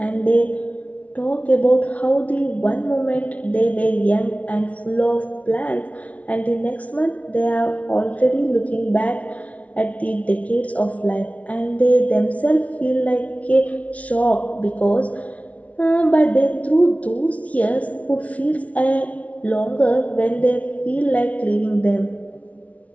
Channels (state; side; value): late; right; 0.066 ms